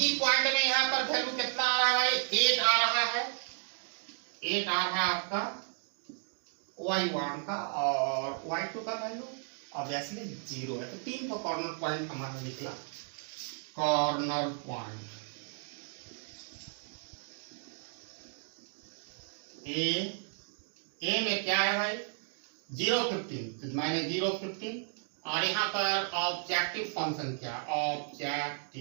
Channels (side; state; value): left; silent; 55 dB below the other